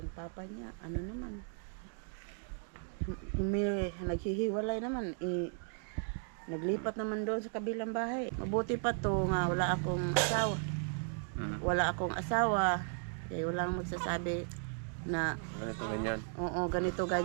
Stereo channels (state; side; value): silent; left; 54 dB below the other